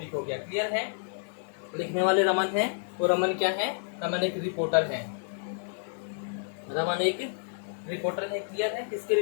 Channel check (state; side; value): silent; right; digital silence